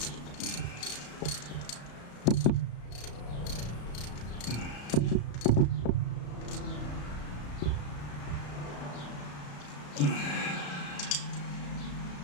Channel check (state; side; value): late; right; 34 ms